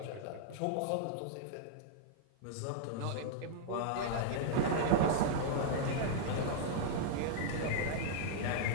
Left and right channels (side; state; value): both; different; correlation -0.01